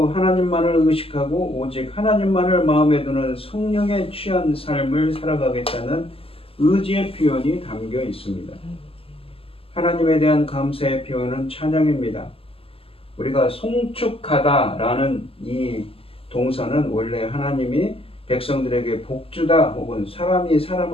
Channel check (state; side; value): late; right; 0.27 ms